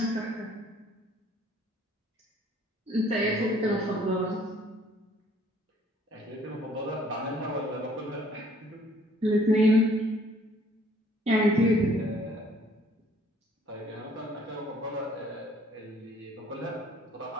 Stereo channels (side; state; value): both; normal; correlation 0.60